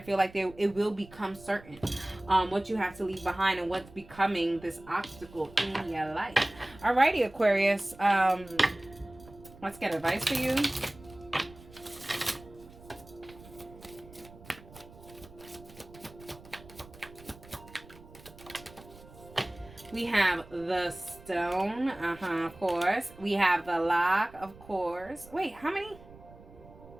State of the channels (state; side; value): noise; right; rumble, 21 dB below the sound